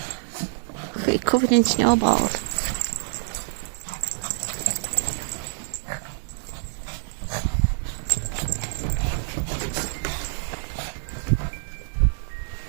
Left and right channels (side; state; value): left; silent; digital silence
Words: Look, covered in snowballs.